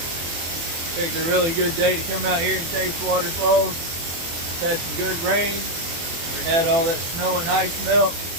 Picked a really good day to come out here and taste waterfalls. Had some good rain. We had all that snow and ice melt.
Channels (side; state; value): left; late; 24 ms